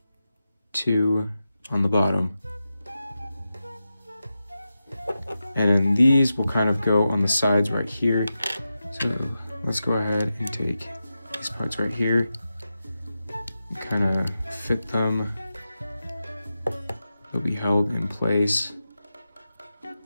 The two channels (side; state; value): both; inverted; correlation -0.91